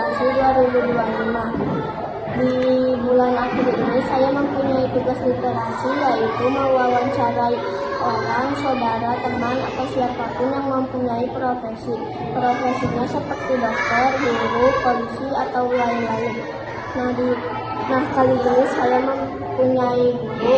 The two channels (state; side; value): identical; both; correlation 1.00